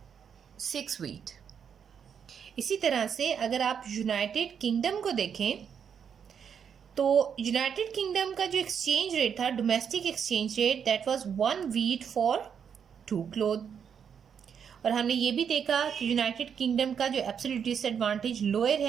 6 wheat. इसी तरह से अगर आप यूनाइटेड किंगडम को देखें तो यूनाइटेड किंगडम का जो एक्सचेंज रेट था, domestic exchange rate, that was 1 wheat for 2 cloth. और हमने ये भी देखा कि यूनाइटेड किंगडम का जो एब्सोल्यूट डिसएडवांटेज लोअर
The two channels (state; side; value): quieter; left; 7.5 dB